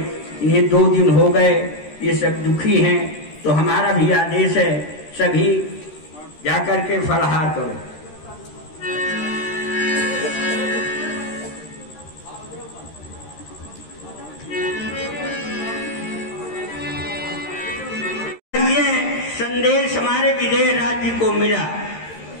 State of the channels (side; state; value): right; late; 13 ms